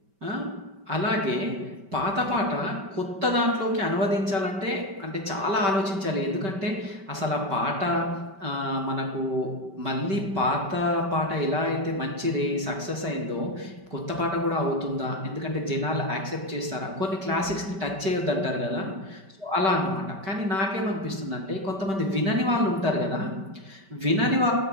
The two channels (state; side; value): late; left; 5.2 ms